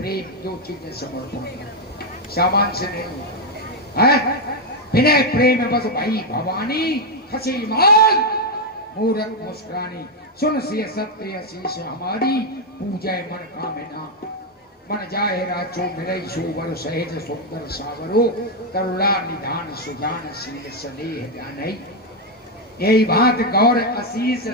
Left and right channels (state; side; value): normal; both; correlation 0.02